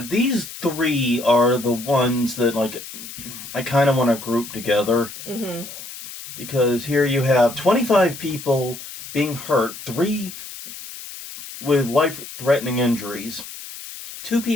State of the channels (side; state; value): left; noise; hiss, 12 dB below the sound